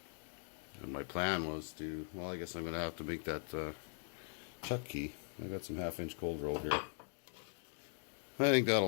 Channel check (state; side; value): silent; right; 51 dB below the other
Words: And my plan was to, well, I guess I'm going to have to make that chuck key. I got some 1/2-inch cold roll here. I think